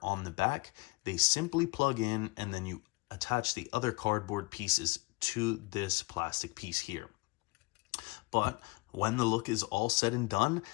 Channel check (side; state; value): right; quieter; 25.5 dB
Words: on the back, they simply plug in, and then you attach the other cardboard pieces to this plastic piece here. But when the look is all said and done,